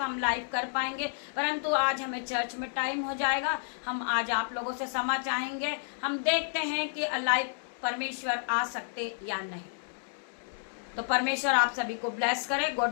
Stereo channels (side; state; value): right; silent; digital silence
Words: हम लाइव कर पाएंगे, परंतु आज हमें चर्च में टाइम हो जाएगा। हम आज आप लोगों से क्षमा चाहेंगे, हम देखते हैं कि लाइव परमेश्वर आ सकते या नहीं। तो परमेश्वर आप सभी को ब्लेस करे। गॉड